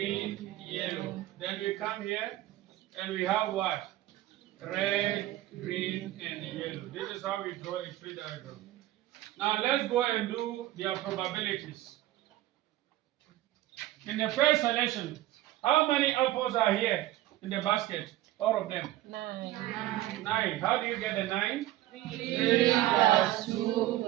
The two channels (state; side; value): quieter; left; 15.3 dB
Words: yellow. Then we come here and we have what? Red, green, and yellow. This is how we draw a tree diagram. Now let's go and do their probabilities. In the first selection, how many apples are here in the basket? All of them? 9. 9. How do you get the 9? 3 plus 2